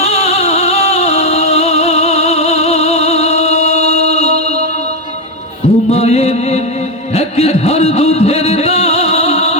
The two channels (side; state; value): both; normal; correlation 0.09